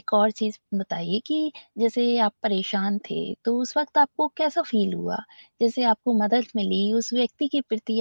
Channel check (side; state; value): both; inverted; correlation -1.00